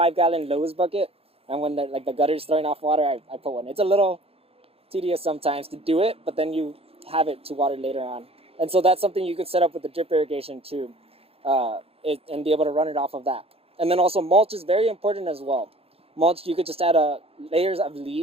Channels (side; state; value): left; late; 0.28 ms